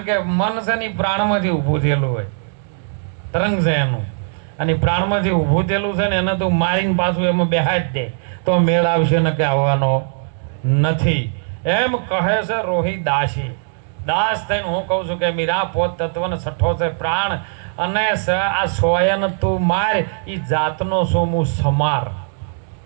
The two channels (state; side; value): silent; left; digital silence